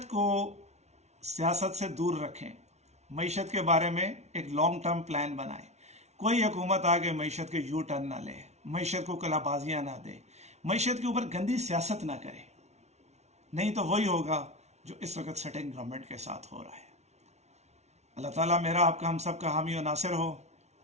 کو سیاست سے دور رکھیں، معیشت کے بارے میں ایک لانگ ٹرم پلان بنائیں۔ کوئی حکومت آگے معیشت کے یو ٹرن نہ لے، معیشت کو کلا بازیاں نہ دے، معیشت کے اوپر گندی سیاست نہ کرے، نہیں تو وہی ہوگا جو اس وقت سٹنگ گورنمنٹ کے ساتھ ہو رہا ہے۔ اللہ تعالیٰ میرا آپ کا ہم سب کا حامی و ناصر ہو۔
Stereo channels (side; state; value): left; late; 0.32 ms